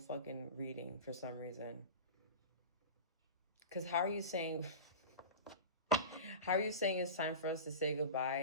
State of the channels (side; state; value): both; inverted; correlation -0.31